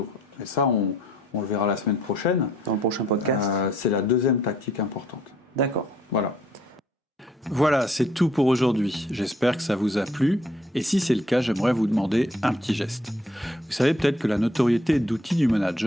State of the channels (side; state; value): both; normal; correlation 0.64